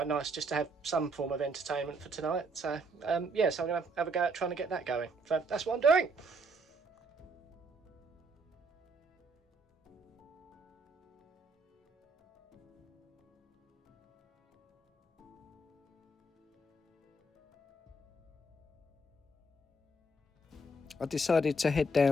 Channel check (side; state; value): both; normal; correlation 0.68